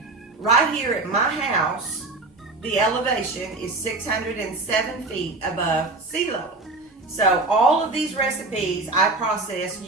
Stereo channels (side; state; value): left; quieter; 3.2 dB